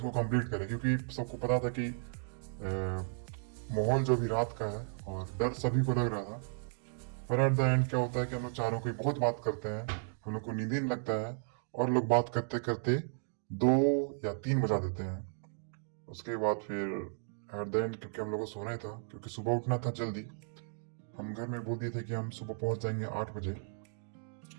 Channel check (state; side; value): silent; left; digital silence